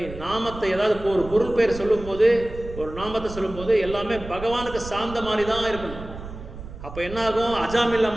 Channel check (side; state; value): right; noise; rumble, 12 dB below the sound